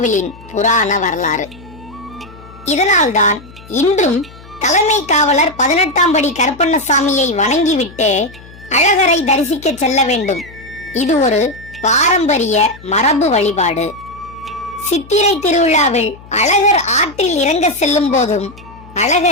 புராண வரலாறு. இதனால்தான் இன்றும் தலைமை காவலர் 18ஆம் படி கருப்பண்ணசாமியை வணங்கிவிட்டு அழகரை தரிசிக்க செல்ல வேண்டும். இது ஒரு பாரம்பரிய மரபு வழிபாடு. சித்திரை திருவிழாவில் அழகர் ஆற்றில் இறங்க செல்லும் போதும்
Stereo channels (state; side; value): noise; left; hum, 21 dB below the sound